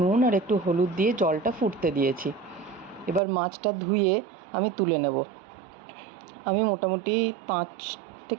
নুন আর একটু হলুদ দিয়ে জলটা ফুটতে দিয়েছি। এবার মাছটা ধুয়ে আমি তুলে নেব। আমি মোটামুটি 5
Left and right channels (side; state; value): left; drops out; at 3.2 s